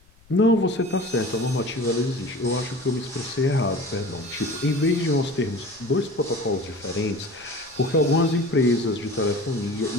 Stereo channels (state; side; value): noise; left; rumble, 29 dB below the sound